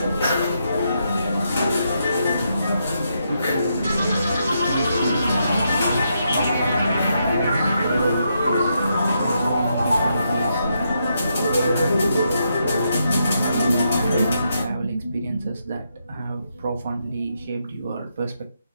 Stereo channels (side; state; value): both; inverted; correlation -0.80